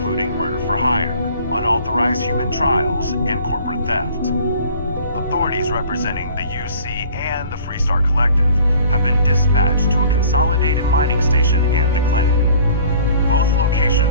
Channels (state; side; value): inverted; both; correlation -0.50